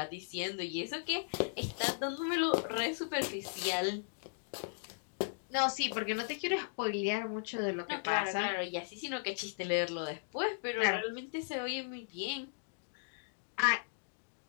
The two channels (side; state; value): right; silent; digital silence